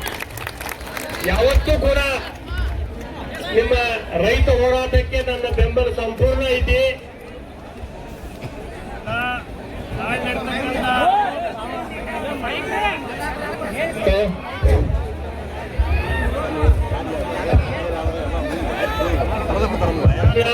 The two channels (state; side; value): identical; both; correlation 1.00